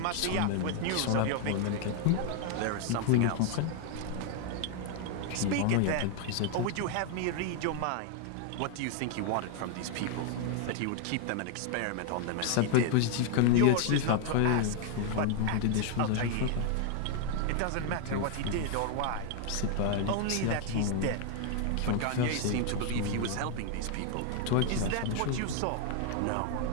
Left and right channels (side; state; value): both; different; correlation 0.00